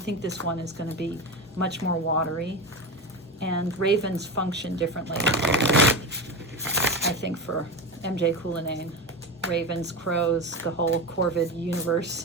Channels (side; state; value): both; normal; correlation 0.22